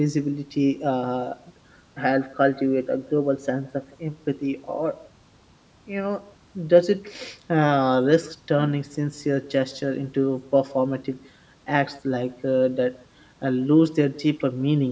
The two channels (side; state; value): both; identical; correlation 1.00